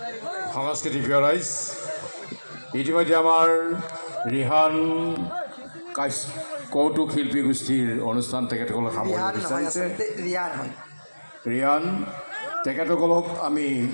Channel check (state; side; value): inverted; both; correlation -1.00